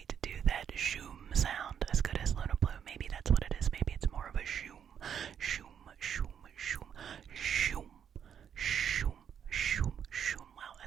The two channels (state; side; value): quieter; left; 8.3 dB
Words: do that shoom sound as good as Luna Blue. Maybe that's what it is. Maybe it's more of a shoom, shoom, shoom, shoom, shoom, shoom, shoom, shoom. Well,